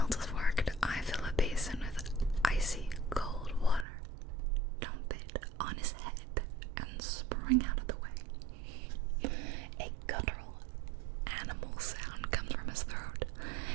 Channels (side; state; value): left; drops out; at 3.9 s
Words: has worked, I fill a basin with icy cold water, dump it on his head, and spring out of the way. A guttural animal sound comes from his throat.